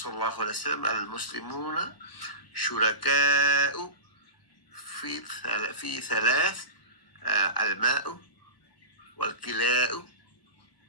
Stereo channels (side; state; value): right; late; 1.0 ms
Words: আলাইহি ওয়াসাল্লাম আল মুসলিমুনা শুরাকাউ ফি থালাথ, আল মাউ ওয়াল কিলাউ